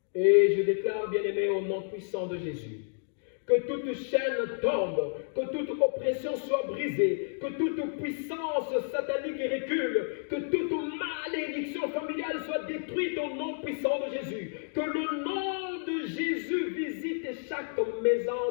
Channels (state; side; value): silent; right; digital silence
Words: Et je déclare, bien-aimé, au nom puissant de Jésus, que toute chaîne tombe, que toute oppression soit brisée, que toute puissance satanique recule, que toute malédiction familiale soit détruite au nom puissant de Jésus. Que le nom de Jésus visite chaque